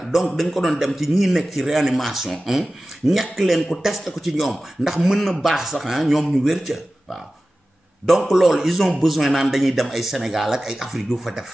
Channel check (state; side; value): normal; both; correlation 0.95